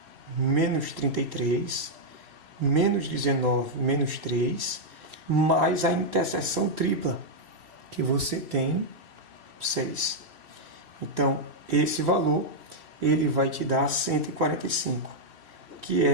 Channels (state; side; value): late; left; 2.8 ms